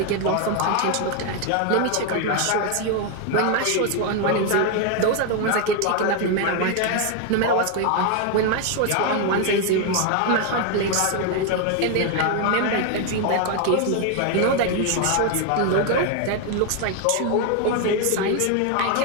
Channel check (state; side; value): different; both; correlation 0.01